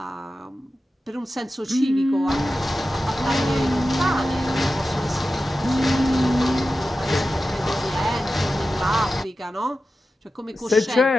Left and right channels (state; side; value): normal; both; correlation 0.93